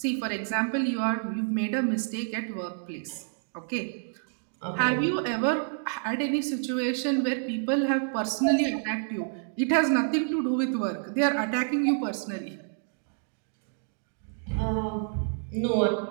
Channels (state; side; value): silent; left; digital silence